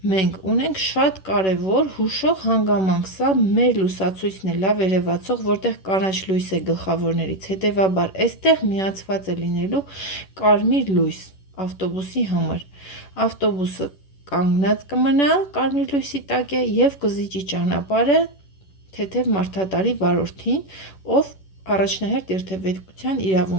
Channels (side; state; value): right; late; 11 ms